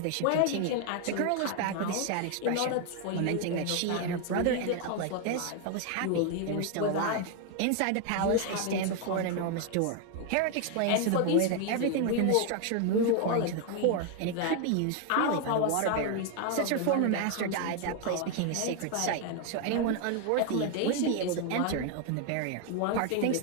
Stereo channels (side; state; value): both; different; correlation 0.01